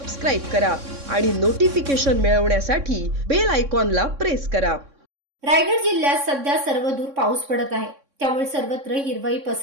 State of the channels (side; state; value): left; late; 3.6 ms